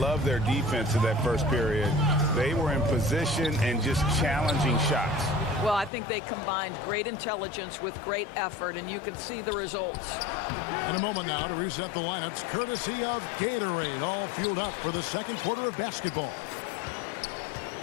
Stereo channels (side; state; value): right; drops out; at 5.9 s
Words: their defense in that first period. They were in position and just challenging shots. Well, I think they combined great intelligence with great effort, and you can see the results. In a moment now to reset the lineups, courtesy of Gatorade, all fueled up for the second quarter of basketball.